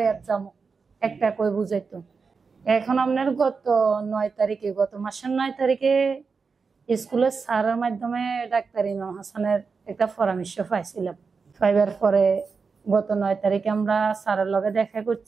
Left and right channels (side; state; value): left; quieter; 5.0 dB